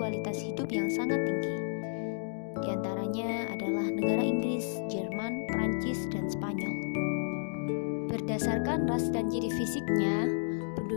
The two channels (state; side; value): silent; right; digital silence